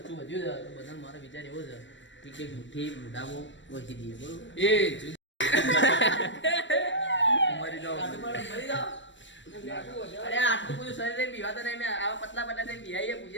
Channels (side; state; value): right; late; 0.54 ms